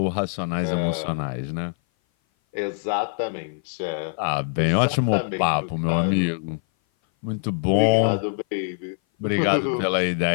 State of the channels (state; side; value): silent; right; 58 dB below the other